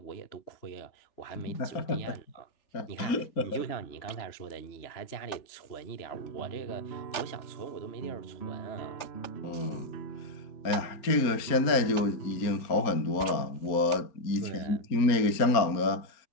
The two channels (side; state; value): right; late; 4.3 ms